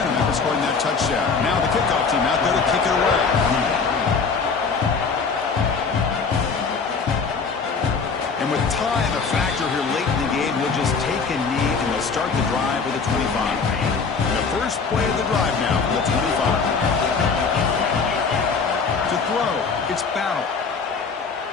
after scoring that touchdown. Now the kickoff team out there to kick it away. And with time a factor here late in the game, he'll just take a knee and they'll start the drive with a 25. And the first play of the drive now, the 25. To throw, it's Battle.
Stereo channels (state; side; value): quieter; right; 5.1 dB